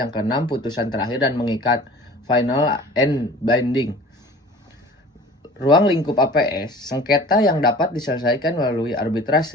keenam putusan terakhir dan mengikat final and binding. Ruang lingkup APS, sengketa yang dapat diselesaikan melalui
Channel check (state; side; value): normal; both; correlation 0.43